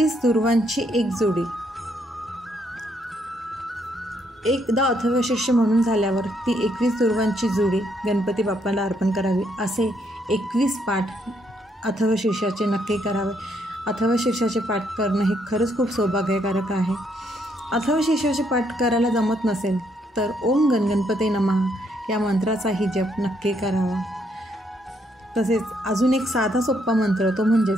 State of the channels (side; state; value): both; normal; correlation 0.73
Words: दुर्वांची एक जोडी. एकदा अथर्वशीर्ष म्हणून झाल्यावर ती 21 दुर्वांची जोडी गणपती बाप्पाला अर्पण करावी. असे 21 पाठ अथर्वशीर्षाचे नक्की करावे. अथर्वशीर्षाचे पाठ करणं हे खरंच खूप सौभाग्यकारक आहे. अथर्वशीर्षाचे पाठ करायला जमत नसेल तर ओम गणगणपते नमः या मंत्राचाही जप नक्की करावा. तसेच अजून एक साधा सोपा मंत्र, तो